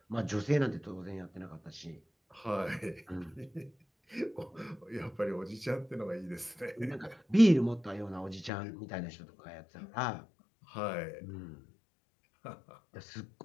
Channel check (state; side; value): drops out; right; at 8.5 s